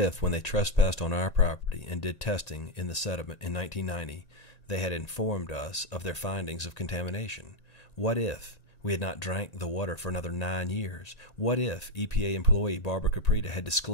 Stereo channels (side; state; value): right; late; 1.8 ms